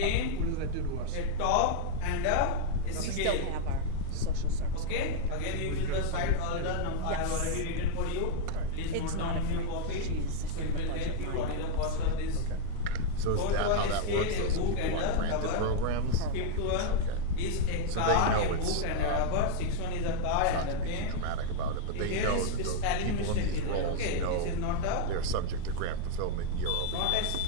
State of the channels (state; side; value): different; both; correlation 0.00